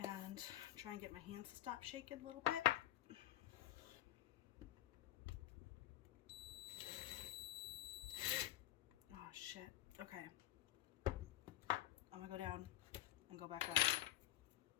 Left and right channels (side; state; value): right; quieter; 14.3 dB